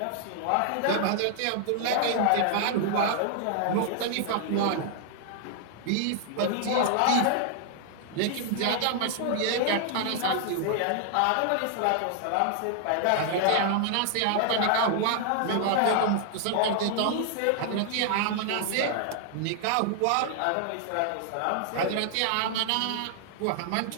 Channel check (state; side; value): different; both; correlation 0.00